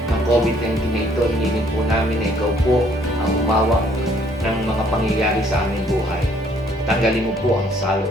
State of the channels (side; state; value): both; normal; correlation 0.63